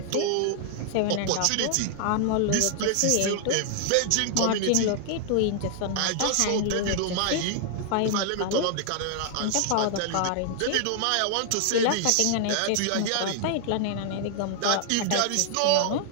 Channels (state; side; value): different; both; correlation 0.00